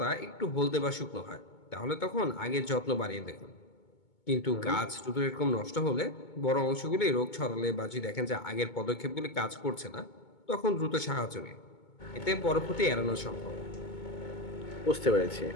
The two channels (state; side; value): late; right; 2.2 ms